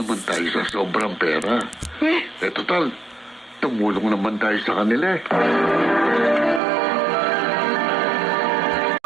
tayo sa sobrang pera. Total, tumulong naman tayo sa kanila.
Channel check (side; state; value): left; drops out; at 6.6 s